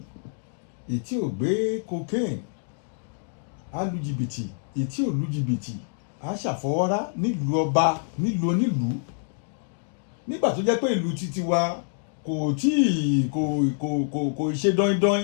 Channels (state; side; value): silent; right; digital silence